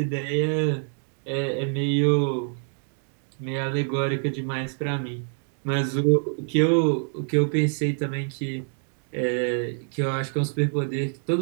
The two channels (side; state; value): left; silent; 61 dB below the other